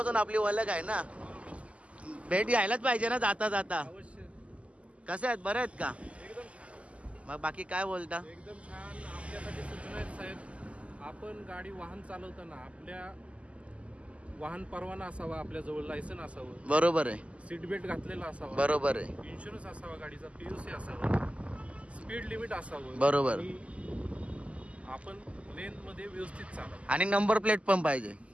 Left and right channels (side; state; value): left; late; 0.062 ms